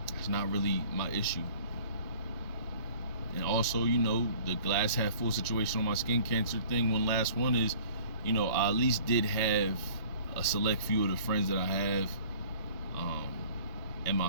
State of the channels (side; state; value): both; inverted; correlation -0.50